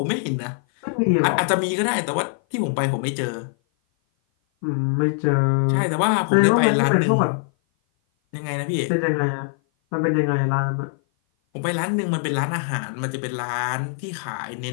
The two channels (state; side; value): silent; right; 56 dB below the other